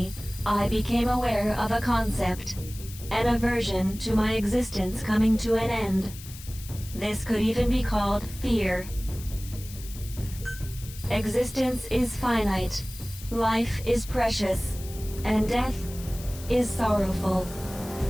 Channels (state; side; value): noise; left; hiss, 15 dB below the sound